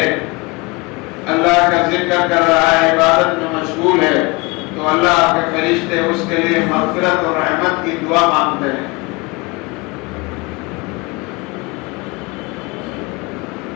اللہ کا ذکر کر رہا ہے، عبادت میں مشغول ہے، تو اللہ کے فرشتے اس کے لیے مغفرت اور رحمت کی دعا مانگتے ہیں۔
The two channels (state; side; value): quieter; right; 25.7 dB